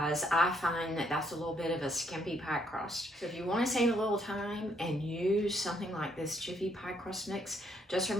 I find that that's a little bit of a skimpy pie crust. So if you want to save a little time and use something like this Jiffy pie crust mix, just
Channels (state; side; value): normal; both; correlation 0.70